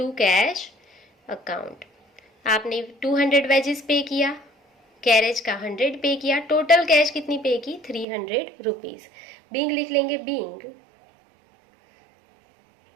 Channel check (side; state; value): left; drops out; at 8.1 s